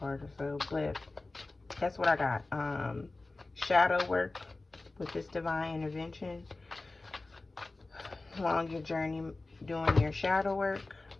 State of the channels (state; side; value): quieter; right; 3.2 dB